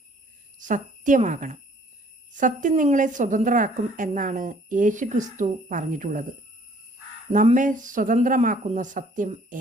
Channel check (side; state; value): both; normal; correlation 0.58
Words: സത്യമാകണം. സത്യം നിങ്ങളെ സ്വതന്ത്രരാക്കും എന്നാണ് യേശുക്രിസ്തു പറഞ്ഞിട്ടുള്ളത്. നമ്മെ സ്വതന്ത്രമാക്കുന്ന സത്യം